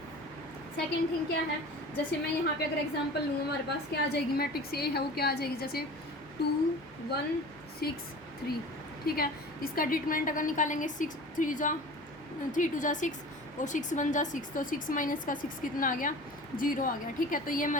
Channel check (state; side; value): normal; both; correlation 0.39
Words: सेकेंड थिंग क्या है, जैसे मैं यहाँ पे अगर एग्जांपल लूँ, हमारे पास क्या आ जाएगी, मैट्रिक्स ए है वो क्या आ जाएगी, जैसे 2 1 6 3, ठीक है। इसका डिटरमिनेंट अगर निकालेंगे 6 3 2 जा 6 और 6 1 जा 6, तो 6 माइनस का 6 कितना आ गया, 0 आ गया, ठीक है। तो ये